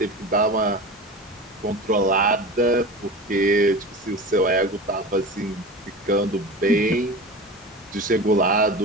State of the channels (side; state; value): both; normal; correlation 0.31